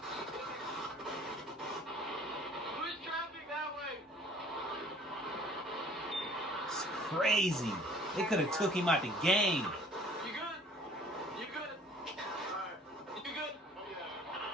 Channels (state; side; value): normal; both; correlation 0.52